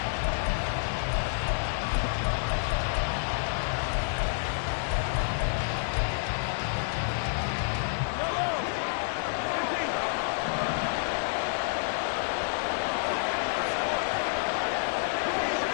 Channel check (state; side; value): silent; right; 59 dB below the other